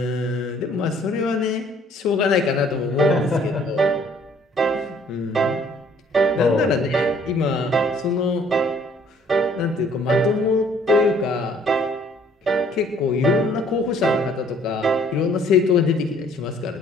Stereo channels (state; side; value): normal; both; correlation 0.59